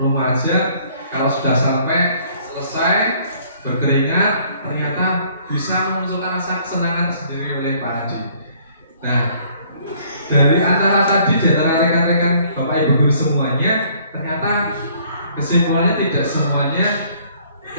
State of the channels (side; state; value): both; inverted; correlation -0.60